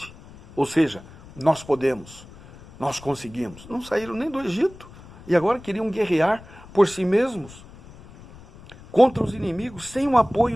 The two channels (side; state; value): left; noise; rumble, 20 dB below the sound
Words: Ou seja, nós podemos, nós conseguimos. Não saíram nem do Egito e agora queriam guerrear por si mesmos contra os inimigos sem o